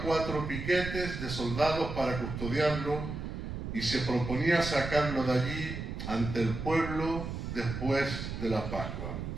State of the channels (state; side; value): noise; right; rumble, 6 dB below the sound